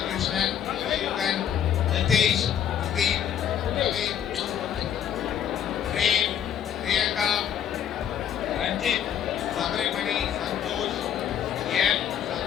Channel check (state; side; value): quieter; right; 9.4 dB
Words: Krishnan, Yugan, Nitish, Pradeep, Ravi, Prem, Priyanka, Ranjit, Sabrimani, Santosh, M,